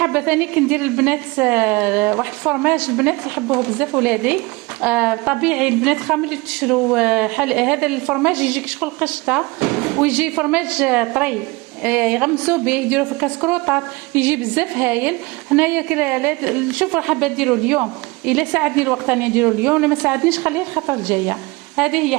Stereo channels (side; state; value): left; quieter; 24.0 dB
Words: ثاني كندير البنات واحد الفرماج البنات يحبوه بزاف ولادي، طبيعي البنات خامل اللي تشرو هذا الفرماج يجيك شغل قشطه، ويجي فرماج طري يغمسوا به يديروا في الكاسكروطات، يجي بزاف هايل. هنايا شوف حابه نديرو اليوم، الا ساعدني الوقت راني نديرو اليوم، لما ساعدنيش خليه الخطره الجايه. هذه هي